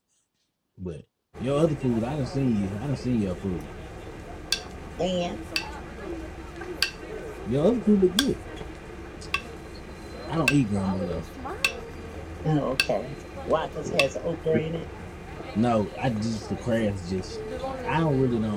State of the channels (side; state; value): both; identical; correlation 1.00